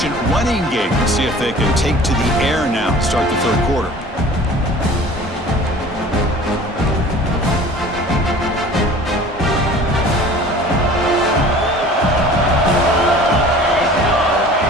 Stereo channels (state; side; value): normal; both; correlation 0.45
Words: running game to see if they can take to the air now to start the third quarter.